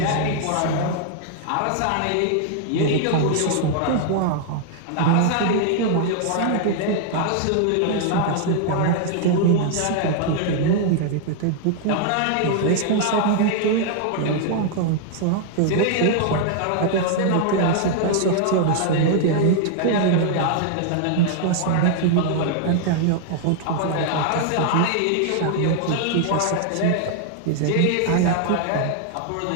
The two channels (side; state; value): both; different; correlation 0.00